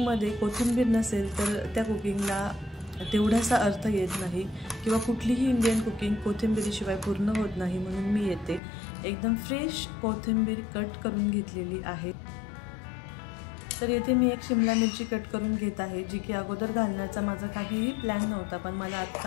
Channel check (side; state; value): right; drops out; at 8.6 s